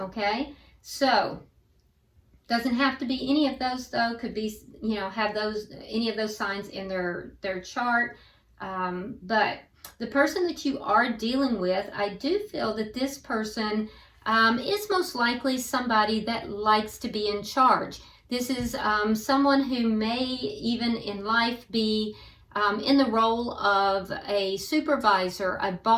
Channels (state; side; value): identical; both; correlation 1.00